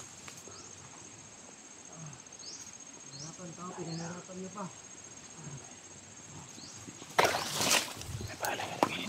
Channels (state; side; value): identical; both; correlation 1.00